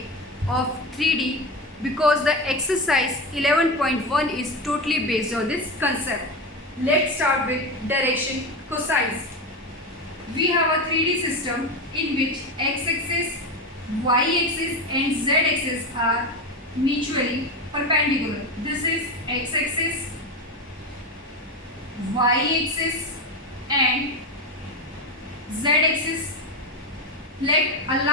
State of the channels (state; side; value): normal; both; correlation 0.18